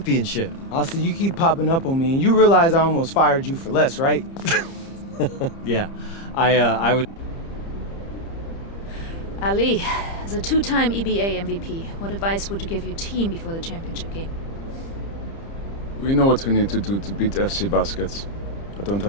Austin, you keep popping up on me, and you realize I almost fired you for less, right? Yeah, I was... Ali, as a two-time EBA MVP, what advice would you give your team before the championship game? We know what we need to do to beat FC Baskets. I don't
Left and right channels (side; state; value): right; late; 30 ms